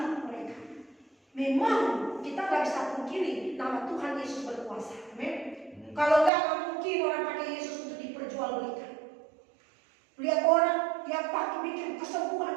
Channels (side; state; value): left; drops out; at 6.3 s